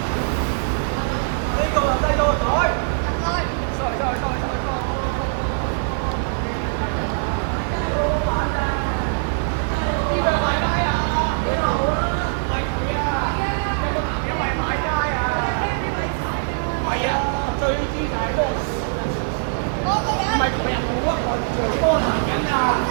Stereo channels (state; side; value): silent; left; 64 dB below the other